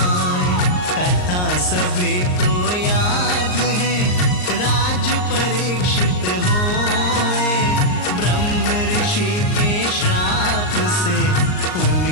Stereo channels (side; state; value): right; late; 39 ms